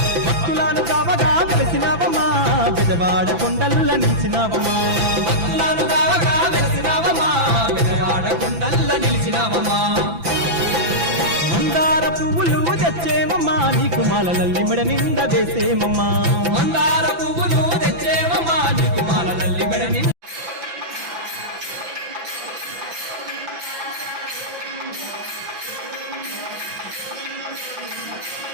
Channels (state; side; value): late; left; 5.9 ms